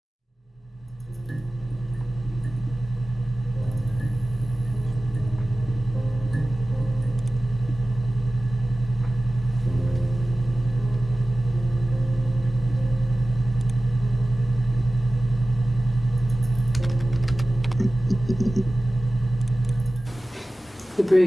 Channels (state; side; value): normal; both; correlation 0.96